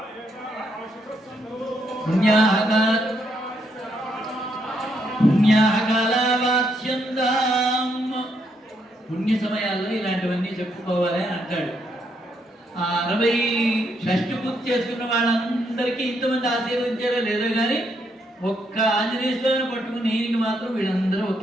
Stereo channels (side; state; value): both; normal; correlation 0.76